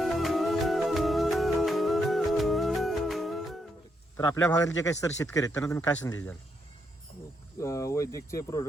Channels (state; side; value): normal; both; correlation 0.79